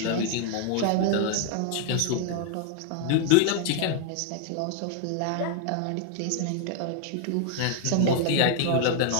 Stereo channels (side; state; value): both; different; correlation 0.00